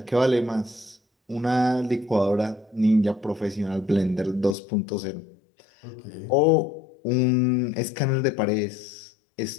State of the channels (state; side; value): drops out; right; at 4.5 s